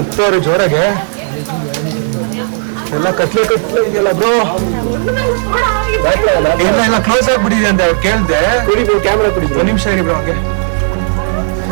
ಜೋರಾಗೆ. ಎಲ್ಲ ಕತ್ಲೆ ಇದೆಯಲ್ಲ ಬ್ರೋ. ಎಲ್ಲ ಕ್ಲೋಸ್ ಆಗ್ಬಿಟ್ಟಿದೆ ಅಂತ ಅವ್ರು ಕೇಳ್ದೆ. ಕ್ಯಾಮ್ರಾ ಕೊಡಿ. 1 ನಿಮಿಷ ಇರಿ ಬ್ರೋ, ಹಂಗೆ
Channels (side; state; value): left; silent; digital silence